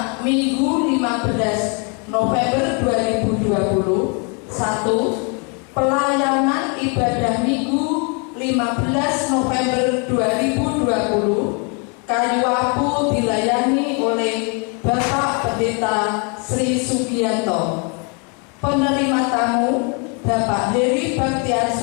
Minggu 15 November 2020. 1. Pelayanan ibadah Minggu 15 November 2020. Kayu Apu dilayani oleh Bapak Pendeta Sri Sugianto. Penerima tamu Bapak Heri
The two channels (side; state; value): right; quieter; 35.4 dB